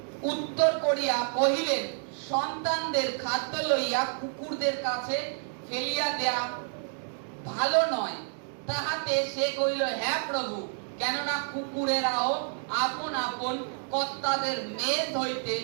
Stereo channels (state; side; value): silent; left; 58 dB below the other